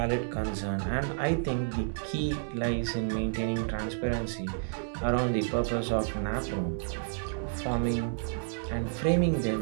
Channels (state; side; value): silent; left; digital silence